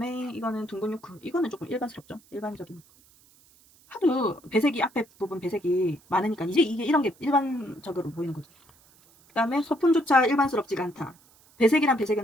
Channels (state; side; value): noise; right; hiss, 29 dB below the sound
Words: 이거는 둥근 유크. 이거는 조금 일반스럽죠. 일반적인. 하도 배색이 앞에 부분 배색이 많으니까 이제 이게 이런 게 일반적으로 보이는 거죠. 그 다음에 소품조차 일반스럽지가 않다. 배색이란 배색은